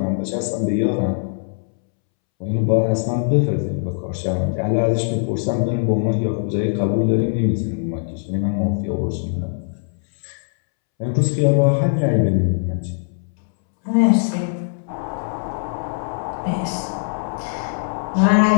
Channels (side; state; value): right; silent; 65 dB below the other